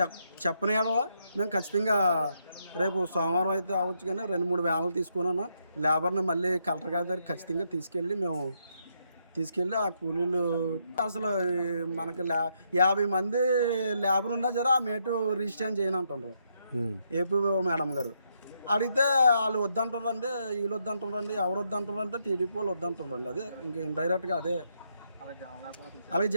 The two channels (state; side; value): inverted; both; correlation -0.78